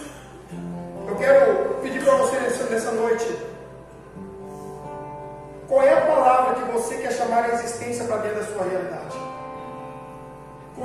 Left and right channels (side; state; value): both; identical; correlation 1.00